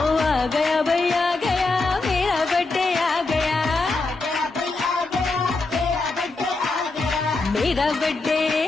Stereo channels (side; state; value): right; quieter; 3.5 dB